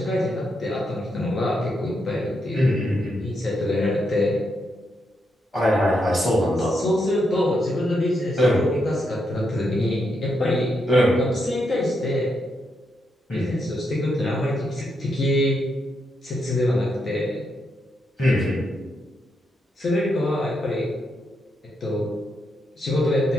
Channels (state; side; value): normal; both; correlation 0.81